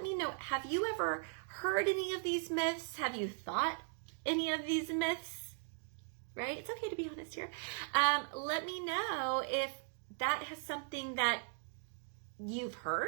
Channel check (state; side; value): silent; left; 52 dB below the other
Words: me know, have you ever heard any of these myths? Have you thought any of these myths? Right? It's okay to be honest here. Let me know if that has something that you've